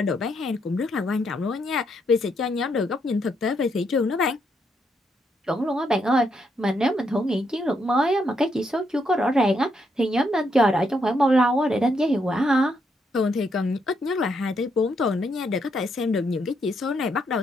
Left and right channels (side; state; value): both; normal; correlation 0.77